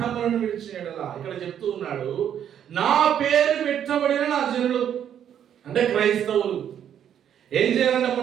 విడిచిన యెడల. ఇక్కడ చెప్తూ ఉన్నాడు, నా పేరు పెట్టబడిన నా జనులు అంటే క్రైస్తవులు ఏం చేయాలంటే,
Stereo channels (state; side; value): quieter; left; 9.5 dB